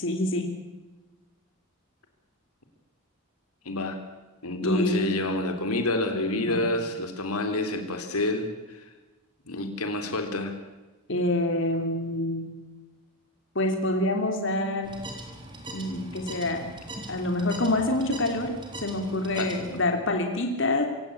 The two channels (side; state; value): both; normal; correlation 0.07